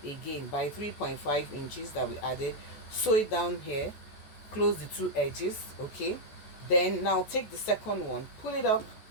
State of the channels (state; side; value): late; right; 14 ms